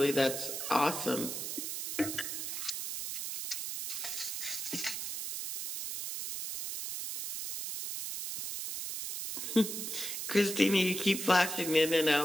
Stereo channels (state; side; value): noise; right; hiss, 4 dB below the sound